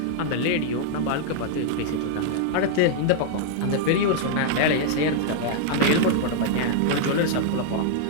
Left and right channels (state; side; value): different; both; correlation -0.01